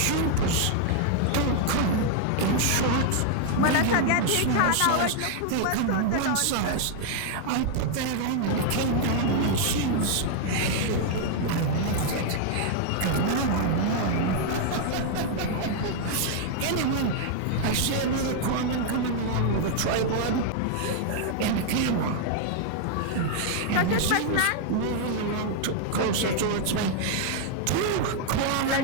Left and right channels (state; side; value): different; both; correlation 0.00